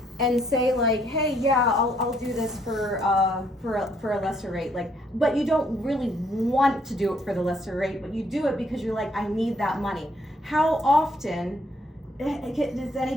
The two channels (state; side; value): normal; both; correlation 0.69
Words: and say like, hey, yeah, I'll do this for a lesser rate, but you don't really want to do it for the lesser rate, but you do it because you're like, I need that money. How often, does